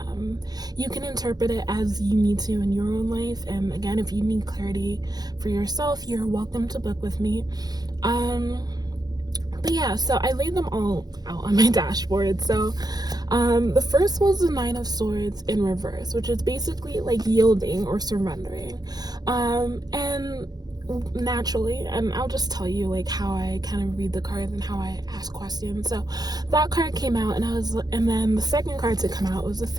you can interpret it as you need to in your own life. And again, if you need clarity for yourself, you're welcome to book with me. But yeah, so I laid them all out on my dashboard. So the first was the Nine of Swords in reverse, which is basically like yielding or surrendering. And naturally, and I'll just tell you like how I kind of read the cards and how I ask questions. So that card came out, and then the second card to come out was the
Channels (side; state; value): left; late; 0.19 ms